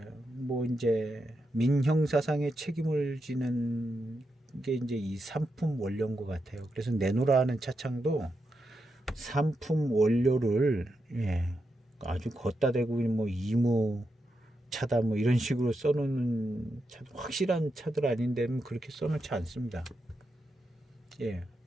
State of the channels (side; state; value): both; normal; correlation 0.86